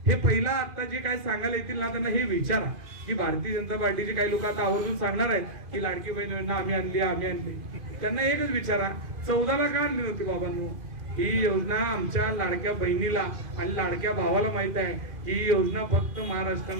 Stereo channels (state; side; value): late; left; 2.5 ms